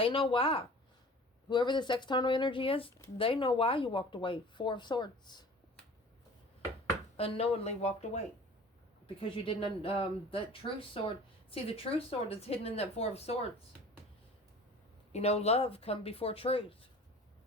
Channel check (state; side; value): normal; both; correlation 0.43